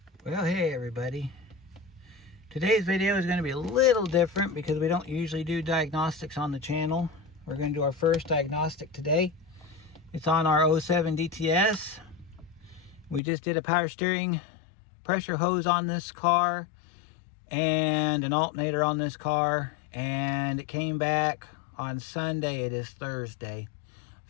Well, hey everybody. Today's video is going to be a little different because we don't usually do diagnostics on the channel. We're going to do our first diagnostic today. It's on our 07 DTS. We just did a power steering pressure hose on this car and an alternator on this car, and it came back on Sunday. It is Thursday. I've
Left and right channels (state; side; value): drops out; right; at 13.2 s